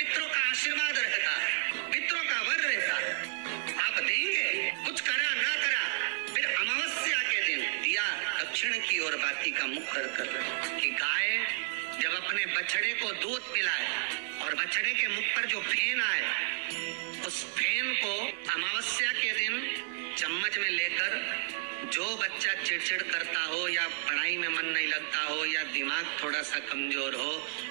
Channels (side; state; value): left; silent; digital silence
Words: का आशीर्वाद रहता, पितरों का वर रहता। आप देंगे, कुछ करा ना करा, फिर अमावस्या के दिन दिया दक्षिण की ओर बाती का मुख कर कि गाय जब अपने बछड़े को दूध पिलाए और बछड़े के मुख पर जो फेन आए, उस फेन को अमावस्या के दिन चम्मच में लेकर, जो बच्चा चिड़चिड़ करता हो या पढ़ाई में मन नहीं लगता हो या दिमाग थोड़ा सा कमजोर हो,